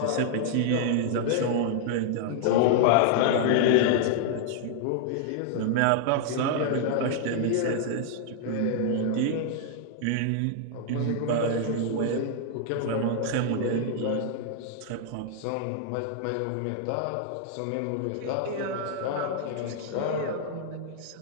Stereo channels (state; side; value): different; both; correlation -0.01